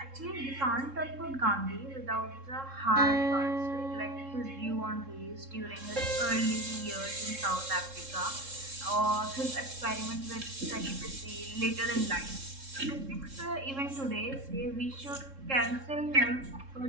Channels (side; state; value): left; late; 3.7 ms